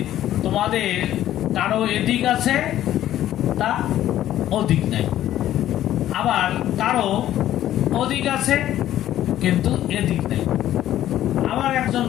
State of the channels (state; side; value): quieter; right; 12.6 dB